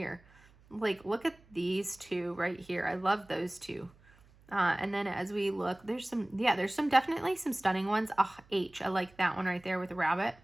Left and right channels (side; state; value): right; noise; hum, 28 dB below the sound